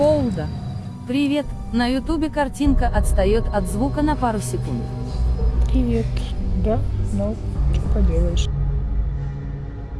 Привет. На ютубе картинка отстает от звука на пару секунд. Привет. Да, ну, что поделаешь.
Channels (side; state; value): both; identical; correlation 1.00